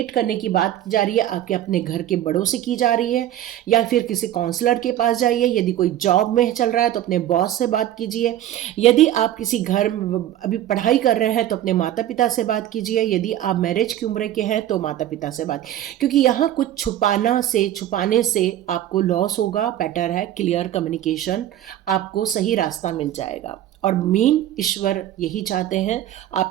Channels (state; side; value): quieter; left; 12.4 dB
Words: करने की बात की जा रही है आपके अपने घर के बड़ों से की जा रही है, या फिर किसी काउंसलर के पास जाइए। यदि कोई जॉब में चल रहा है तो अपने बॉस से बात कीजिए। यदि आप किसी घर अभी पढ़ाई कर रहे हैं तो अपने माता पिता से बात कीजिए। यदि आप मैरिज की उम्र के हैं तो माता पिता से बात, क्योंकि यहाँ कुछ छुपाने से आपको लॉस होगा। बेटर है क्लियर कम्युनिकेशन, आपको सही रास्ता मिल जाएगा। और मेन ईश्वर यही चाहते हैं,